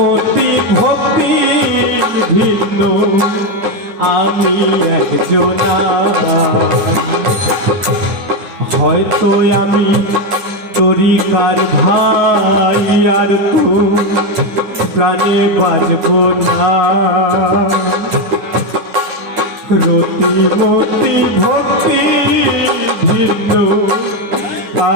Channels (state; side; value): late; left; 10 ms